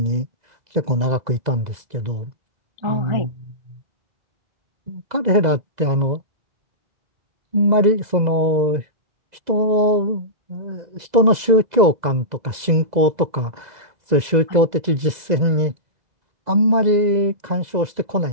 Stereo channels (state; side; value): late; left; 2.0 ms